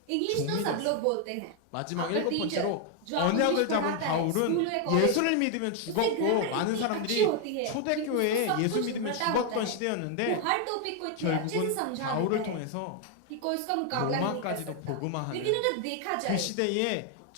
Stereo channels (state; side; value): different; both; correlation 0.01